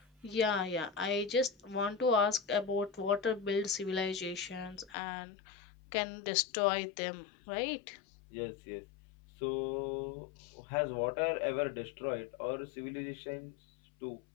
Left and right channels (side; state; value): right; drops out; at 5.0 s